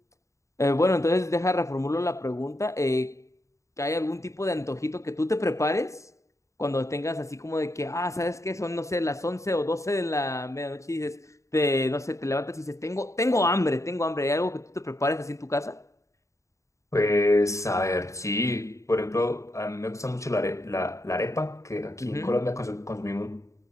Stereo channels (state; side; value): late; right; 0.15 ms